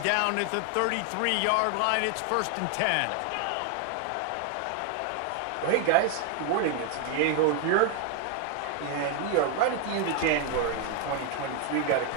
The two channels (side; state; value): both; different; correlation 0.01